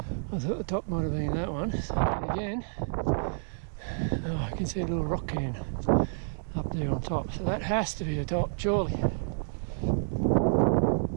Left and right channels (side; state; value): left; silent; digital silence